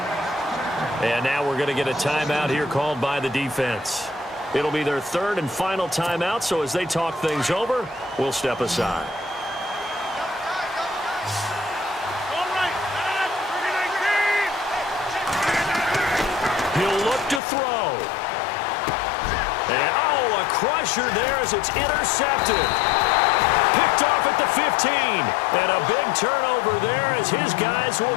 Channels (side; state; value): right; drops out; at 17.4 s